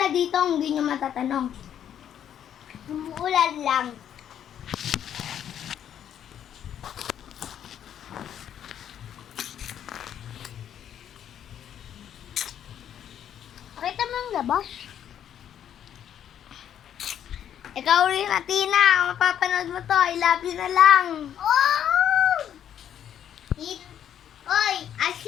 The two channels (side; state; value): right; quieter; 9.7 dB